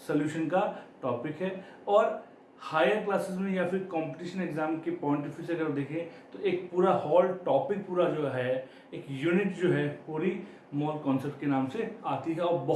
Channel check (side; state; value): both; identical; correlation 1.00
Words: सोल्यूशन का टॉपिक है। और हायर क्लासेस में या फिर कंपटीशन एग्जाम के पॉइंट ऑफ व्यू से अगर देखें तो एक पूरा होल टॉपिक पूरा जो है एक यूनिट जो है पूरी मोल कॉन्सेप्ट के नाम से आती है और